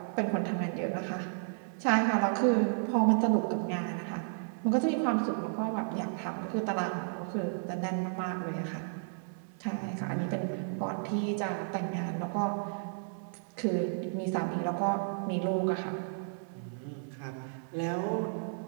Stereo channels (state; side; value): silent; left; 56 dB below the other